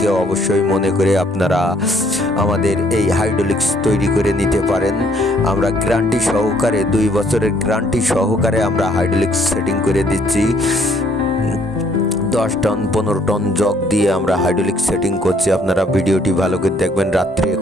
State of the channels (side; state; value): both; normal; correlation 0.65